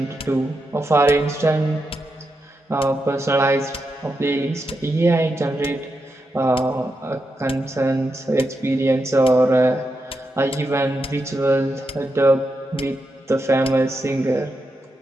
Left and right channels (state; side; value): normal; both; correlation 0.86